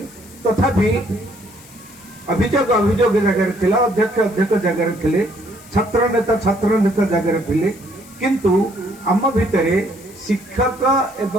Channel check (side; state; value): left; noise; hiss, 23 dB below the sound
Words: तथापि अभियोग अभियोग जगह थिला अध्यक्ष अध्यक्ष जगह थिले छात्र नेता जगह थिले किंतु आम भितर शिक्षक